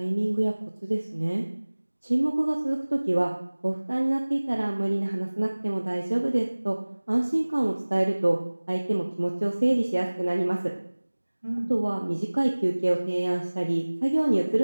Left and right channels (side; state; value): both; inverted; correlation -1.00